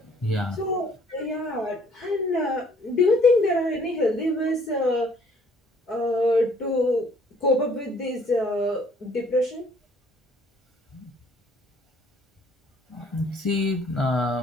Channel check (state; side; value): normal; both; correlation 0.60